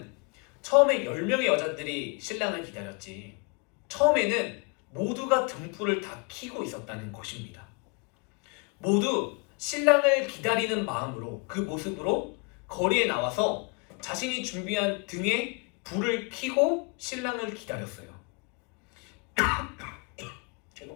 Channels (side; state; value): right; quieter; 32.2 dB